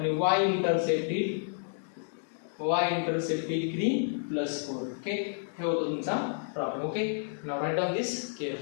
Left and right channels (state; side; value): silent; right; digital silence